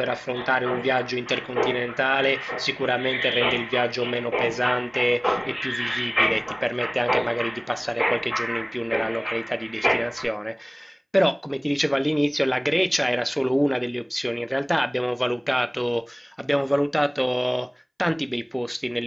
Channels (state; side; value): identical; both; correlation 1.00